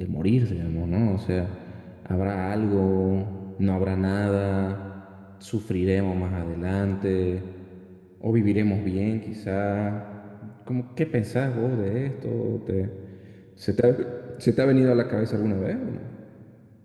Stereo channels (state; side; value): identical; both; correlation 1.00